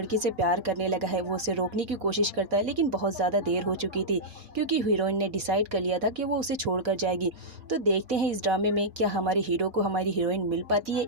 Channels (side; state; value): left; late; 4.0 ms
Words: से प्यार करने लगा है। वो उसे रोकने की कोशिश करता है लेकिन बहुत ज़्यादा देर हो चुकी थी, क्योंकि हीरोइन ने डिसाइड कर लिया था कि वो उसे छोड़कर जाएगी। तो देखते हैं इस ड्रामे में क्या हमारे हीरो को हमारी हीरोइन मिल पाती है